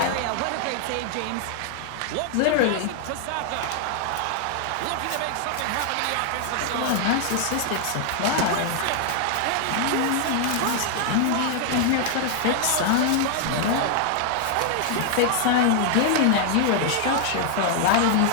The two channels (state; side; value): different; both; correlation 0.00